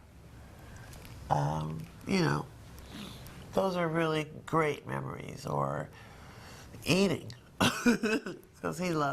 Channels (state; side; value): identical; both; correlation 1.00